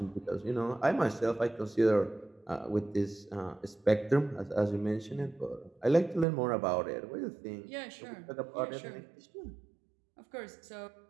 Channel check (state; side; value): drops out; left; at 6.2 s